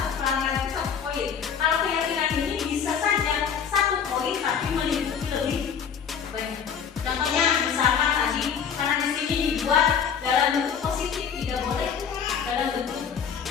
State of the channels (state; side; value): quieter; right; 7.3 dB